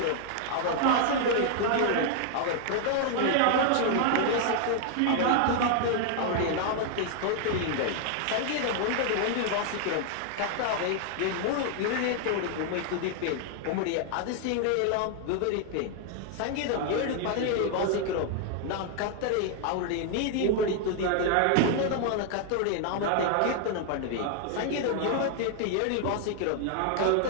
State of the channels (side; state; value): both; different; correlation 0.00